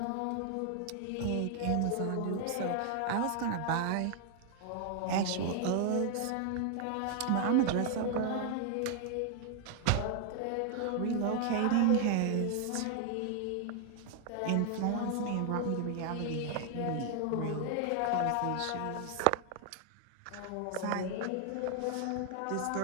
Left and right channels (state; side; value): different; both; correlation 0.00